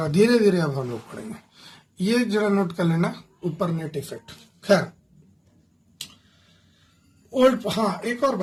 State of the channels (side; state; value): both; identical; correlation 1.00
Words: धीरे धीरे अब हम लोग पढ़ेंगे। ये जरा नोट कर लेना, ऊपर नेट इफेक्ट। खैर, ओल्ड, हाँ एक और